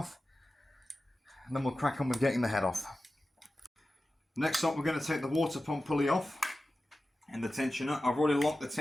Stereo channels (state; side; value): normal; both; correlation 0.94